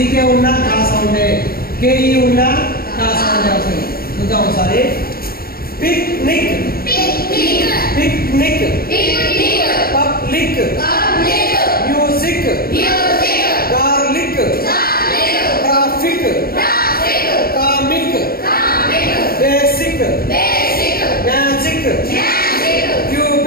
ఉన్నా కాస ఉండే, కేఈ ఉన్నా కాస ఉండే వస్తుంది. చూద్దాం ఒకసారి. Picnic, picnic, public, music, garlic, traffic, comic, basic, magic,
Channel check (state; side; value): late; right; 0.44 ms